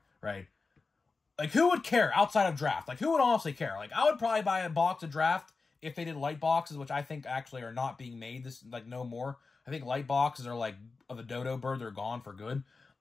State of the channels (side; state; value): right; quieter; 4.2 dB